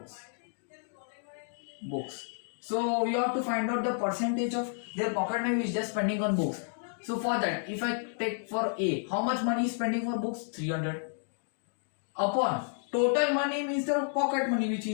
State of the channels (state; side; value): silent; right; digital silence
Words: So you have to find out the percentage of their pocket money which they are spending on books. So for that, if I take for A, how much money is spending for books? 300 upon total money means the pocket money which he